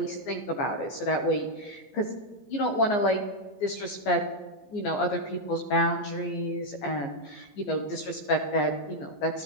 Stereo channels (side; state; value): right; late; 14 ms